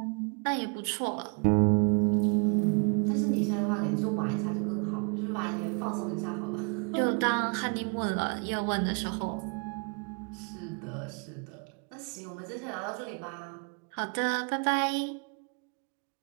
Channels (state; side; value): quieter; left; 35.8 dB